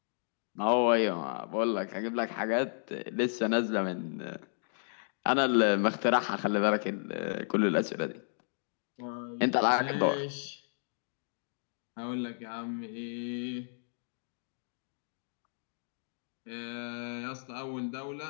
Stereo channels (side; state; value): right; silent; digital silence